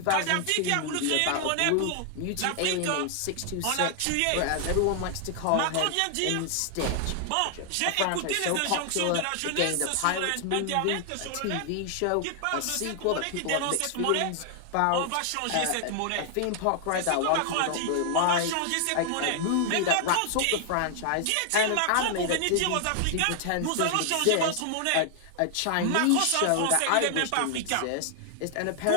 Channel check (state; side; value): different; both; correlation 0.00